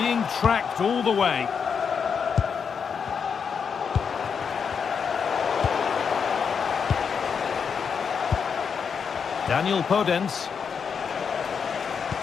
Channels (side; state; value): right; quieter; 6.4 dB